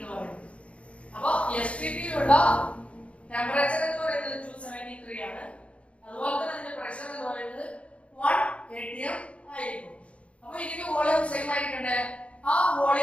പറയുന്നത്. അപ്പോൾ STP യിലുള്ള ടെമ്പറേച്ചർ എന്ന് പറയുന്നത് 273 ആണ്. അതുപോലെ തന്നെ അതിന്റെ പ്രഷർ എന്ന് പറയുന്നത് 1 atm ആയിരിക്കും. അപ്പോൾ ഇതിന്റെ വോളിയം സെയിം ആയിരിക്കണ്ടേ? ആ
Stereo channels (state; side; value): late; right; 0.062 ms